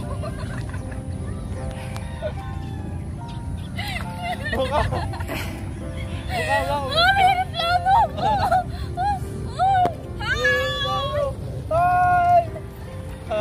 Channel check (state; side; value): identical; both; correlation 1.00